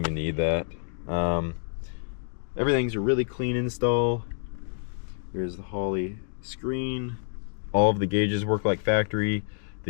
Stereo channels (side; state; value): right; silent; digital silence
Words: need that. Everything's a really clean install. Here's the Holley screen. All of the gauges work like factory.